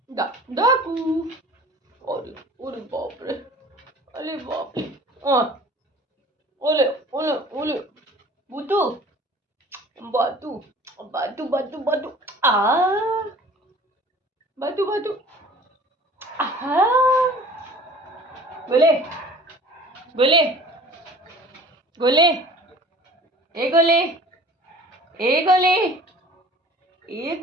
डाकू, ओले, ओले बाप रे, अरे बाप रे, ओले, ओले, ओले, बूटू, बातू, बातू, बातू, बातू, बातू, बातू, गोले, गोले, गोले, ए गोले, ए गोले, ए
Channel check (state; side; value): normal; both; correlation 0.46